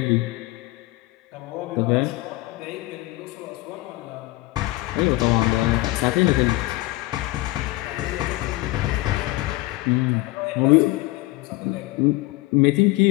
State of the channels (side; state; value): right; quieter; 20.1 dB